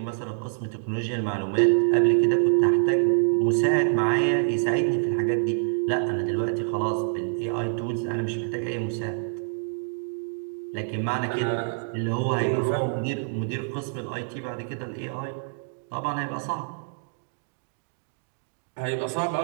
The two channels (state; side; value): silent; left; digital silence